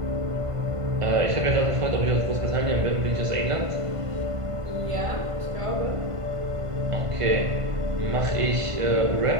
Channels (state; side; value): late; left; 1.5 ms